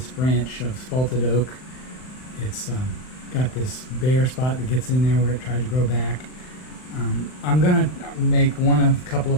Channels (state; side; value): late; right; 39 ms